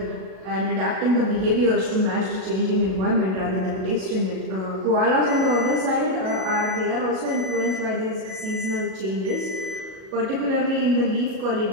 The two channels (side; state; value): left; late; 37 ms